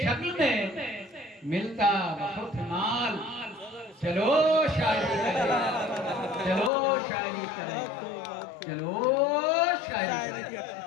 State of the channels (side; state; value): right; drops out; at 6.7 s